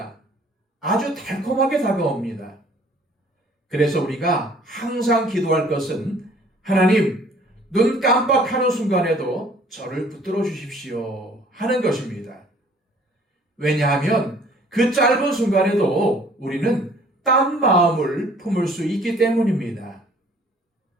아주 달콤하게 다가옵니다. 그래서 우리가 항상 기도할 것은 하나님, 눈 깜빡하는 순간에도 저를 붙들어 주십시오 하는 것입니다. 왜냐하면 그 짧은 순간에도 우리는 딴 마음을 품을 수 있기 때문입니다.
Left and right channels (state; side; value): normal; both; correlation 0.56